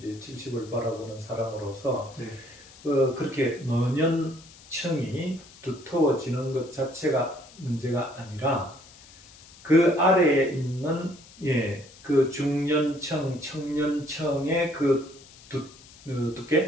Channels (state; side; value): noise; left; hiss, 22 dB below the sound